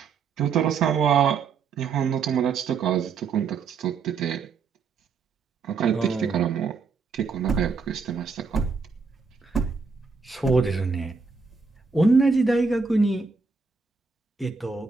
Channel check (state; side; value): quieter; left; 5.0 dB